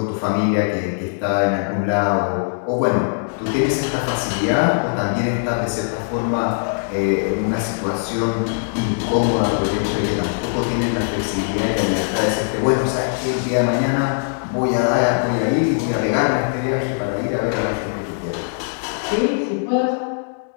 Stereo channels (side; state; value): right; silent; digital silence